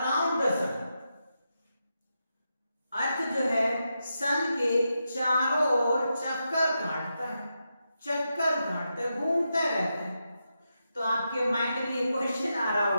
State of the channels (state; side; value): inverted; both; correlation -0.87